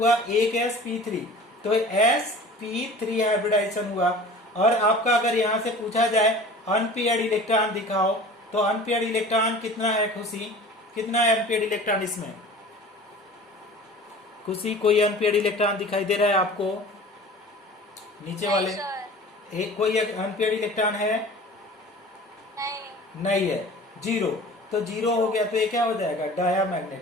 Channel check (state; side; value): normal; both; correlation 0.42